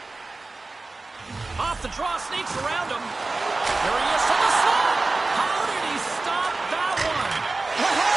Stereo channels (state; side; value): quieter; left; 3.4 dB